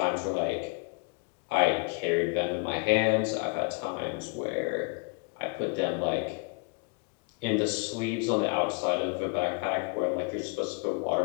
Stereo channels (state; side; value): quieter; right; 31.7 dB